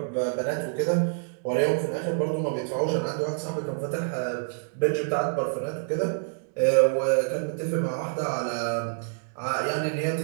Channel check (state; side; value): silent; left; 60 dB below the other